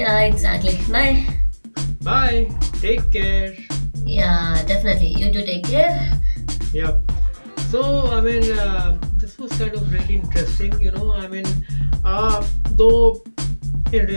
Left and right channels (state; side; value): inverted; both; correlation -1.00